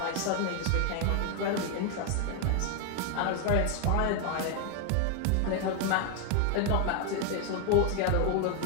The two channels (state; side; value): different; both; correlation 0.00